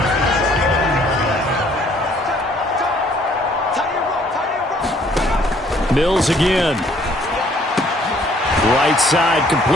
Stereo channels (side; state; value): both; normal; correlation 0.61